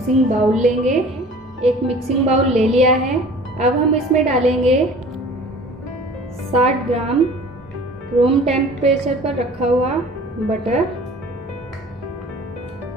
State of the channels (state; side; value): normal; both; correlation 0.45